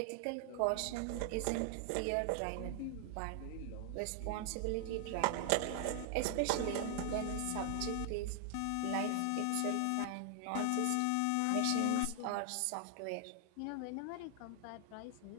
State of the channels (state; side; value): different; both; correlation 0.00